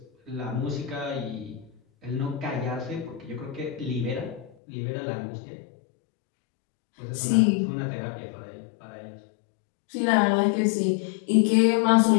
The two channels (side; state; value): right; drops out; at 4.5 s